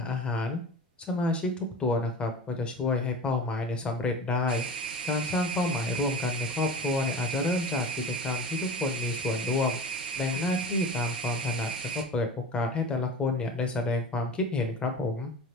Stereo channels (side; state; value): both; normal; correlation 0.34